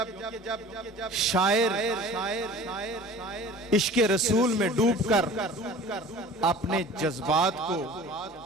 شاعر عشق رسول میں ڈوب کر اپنے جذبات کو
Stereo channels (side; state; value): both; normal; correlation 0.43